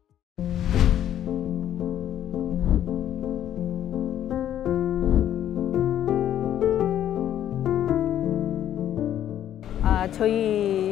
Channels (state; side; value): quieter; right; 11.1 dB